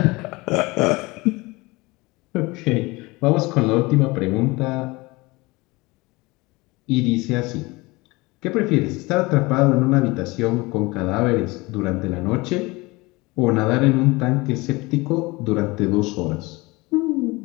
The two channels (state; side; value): quieter; right; 23.2 dB